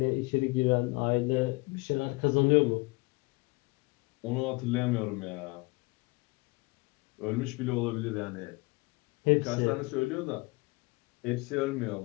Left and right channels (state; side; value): quieter; right; 25.4 dB